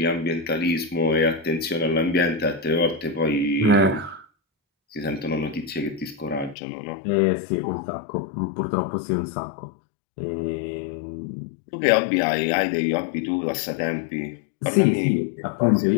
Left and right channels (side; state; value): right; drops out; at 6.6 s